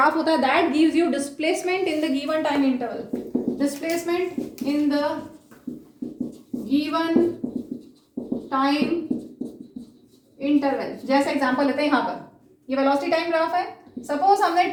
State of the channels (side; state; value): both; identical; correlation 1.00